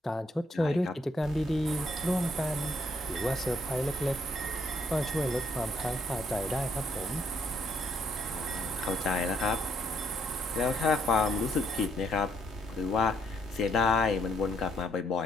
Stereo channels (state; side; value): normal; both; correlation 0.71